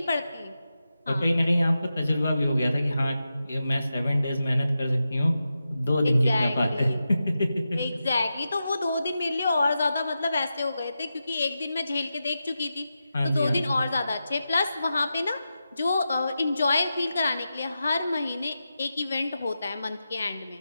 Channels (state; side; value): inverted; both; correlation -0.90